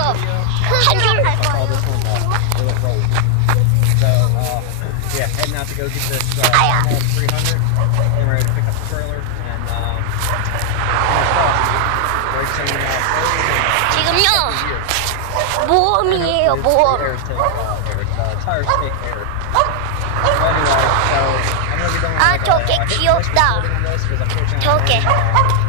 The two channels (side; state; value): both; different; correlation 0.00